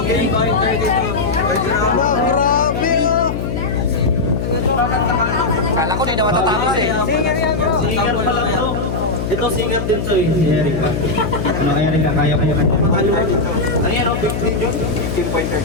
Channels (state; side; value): noise; left; hum, 3 dB below the sound